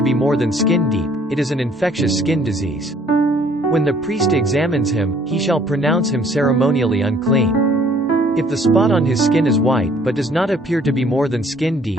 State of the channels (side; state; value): both; normal; correlation 0.59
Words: be more than skin deep, it is an infectious skin disease. When the priest examines him, he shall pronounce him ceremonially unclean. If the spot on his skin is white but does not appear to be more than skin deep